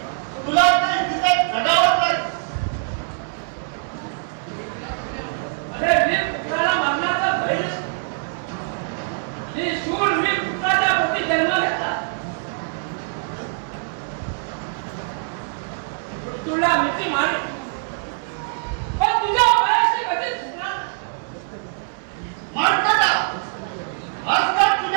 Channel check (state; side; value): silent; left; 63 dB below the other